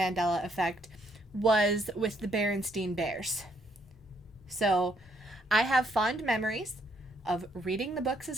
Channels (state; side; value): normal; both; correlation 0.71